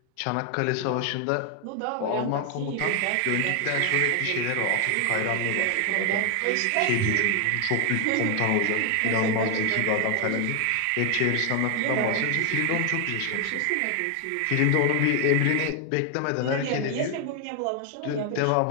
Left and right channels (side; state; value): both; different; correlation 0.01